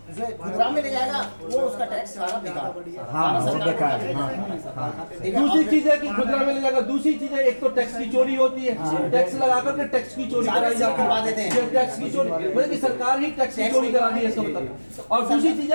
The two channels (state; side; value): inverted; both; correlation -1.00